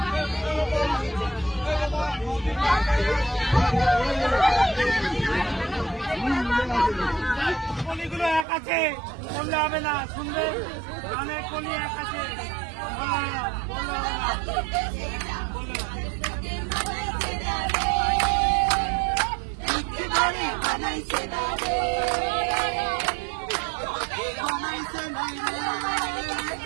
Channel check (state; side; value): drops out; left; at 8.5 s